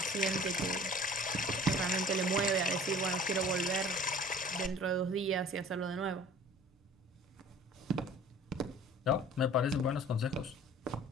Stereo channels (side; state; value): both; normal; correlation 0.47